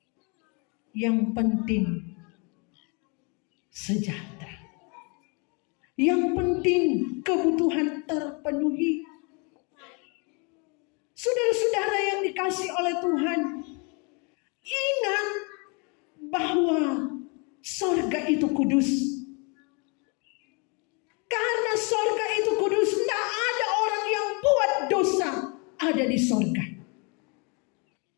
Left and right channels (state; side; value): quieter; right; 33.1 dB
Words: Yang penting sejahtera. Yang penting kebutuhan terpenuhi. Saudara-saudara yang dikasihi oleh Tuhan, ingat bahwa sorga itu kudus. Karena sorga itu kudus, tidak ada orang yang buat dosa ada di sorga.